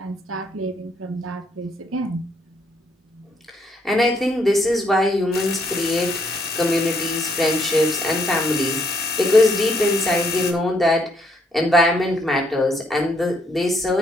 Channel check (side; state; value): both; normal; correlation 0.71